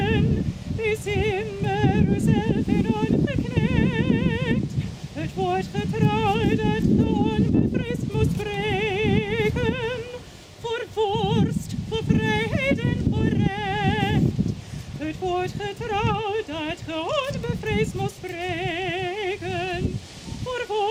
wees immer uzelf en ongeknecht. Het woord getrouw dat ge onbevreesd moest spreken, voor vorst, voor vrijheid en voor recht. Het woord getrouw dat ge onbevreesd moest spreken, voor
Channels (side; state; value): both; identical; correlation 1.00